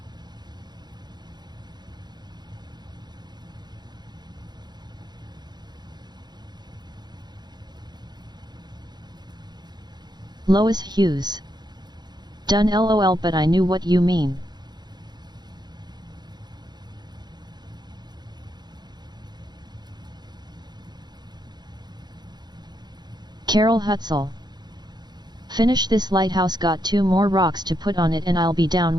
Lois Hughes. Done lol, but I knew what you mean. Carol Hutzel. Finish this lighthouse, got 2 more rocks to put on it, and I'll be down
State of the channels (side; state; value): left; late; 0.20 ms